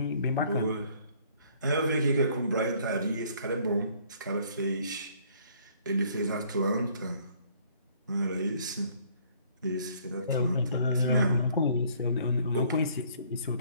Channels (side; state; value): both; inverted; correlation -0.60